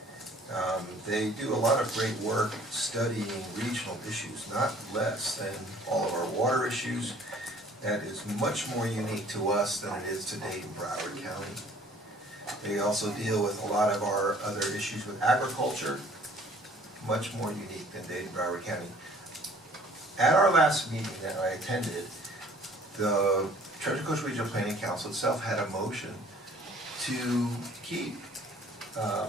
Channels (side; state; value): both; normal; correlation 0.55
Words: They do a lot of great work studying regional issues, not less than all of our water issues. That is much more unique to us than it is to Dade and Broward County. They also deal with a lot of our other issues with agriculture, much more unique than Dade and Broward County. At our last meeting that I attended, the Treasure Coast Regional Planning Council itself had a motion to keep